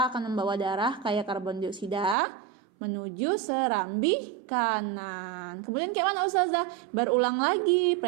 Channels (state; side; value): drops out; left; at 2.1 s